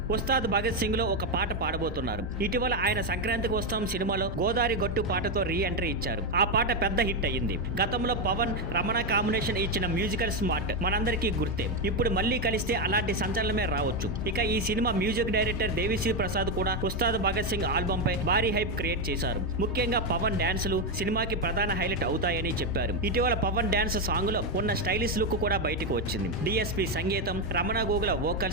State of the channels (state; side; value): normal; both; correlation 0.07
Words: ఉస్తాద్ భగత్ సింగ్ లో ఒక పాట పాడబోతున్నారు. ఇటీవల ఆయన సంక్రాంతికి వస్తాం సినిమాలో గోదారి గట్టు పాటతో రీ ఎంట్రీ ఇచ్చారు. ఆ పాట పెద్ద హిట్ అయ్యింది. గతంలో పవన్ రమణ కాంబినేషన్ ఇచ్చిన మ్యూజికల్ స్మార్ట్ మనందరికీ గుర్తే. ఇప్పుడు మళ్లీ కలిస్తే అలాంటి సంచలనమే రావచ్చు. ఇక ఈ cinema music director Devi Sri Prasad కూడా ఉస్తాద్ భగత్ సింగ్ ఆల్బమ్ పై భారీ హైప్ క్రియేట్ చేశారు. ముఖ్యంగా పవన్ డాన్సులు సినిమాకి ప్రధాన హైలైట్ అవుతాయని చెప్పారు. ఇటీవల పవన్ డాన్స్ సాంగ్ లో ఉన్న స్టైలిష్ లుక్ కూడా బయటకు వచ్చింది. డిఎస్పి సంగీతం, Ramana Gogula